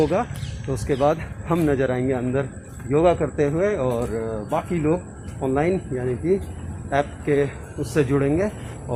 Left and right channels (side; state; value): both; identical; correlation 1.00